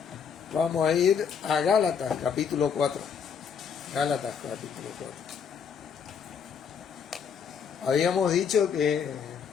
Vamos a ir a Gálatas, capítulo 4. Gálatas, capítulo 4. Habíamos dicho que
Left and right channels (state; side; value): quieter; right; 6.8 dB